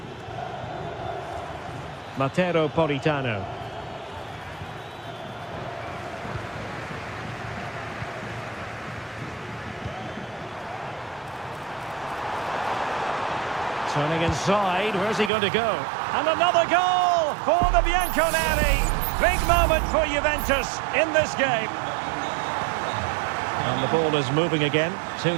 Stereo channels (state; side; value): drops out; left; at 15.3 s